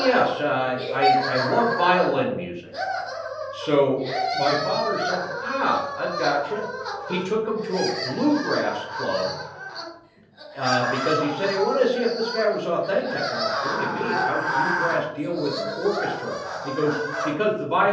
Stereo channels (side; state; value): both; identical; correlation 1.00